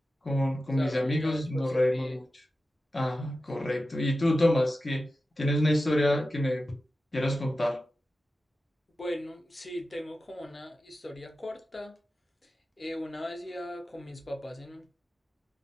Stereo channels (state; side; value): normal; both; correlation 0.93